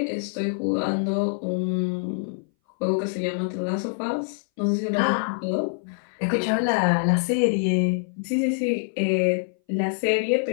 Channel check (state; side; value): silent; right; 60 dB below the other